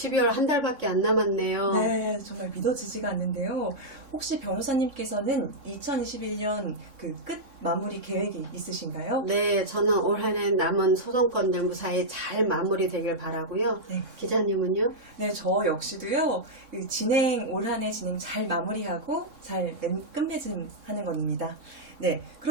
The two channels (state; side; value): late; left; 3.6 ms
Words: 한 달밖에 안 남았네요. 네, 정말 믿어지지가 않는데요. 혹시 변호사님께서는 2021년 그 끝 마무리 계획이 있으신가요? 네, 저는 올 한 해 남은 소송건들 무사히 잘 마무리되길 바라고요. 네. 기자님은요? 네, 저 역시도요, 올 한 해 진행 잘 마무리하고 잘 끝맺음하는 겁니다. 네,